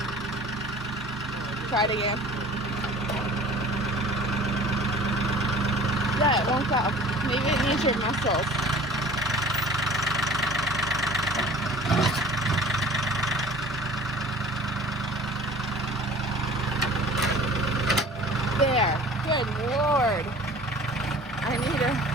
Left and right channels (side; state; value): both; normal; correlation 0.46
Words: Try it again. Yeah, it won't go. Maybe it needs your muscles. There. Good Lord. I need to